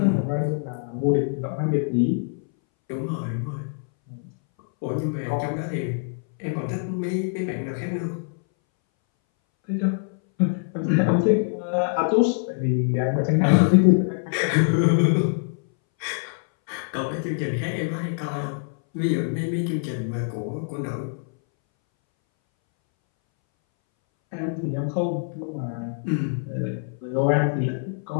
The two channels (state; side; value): silent; right; 61 dB below the other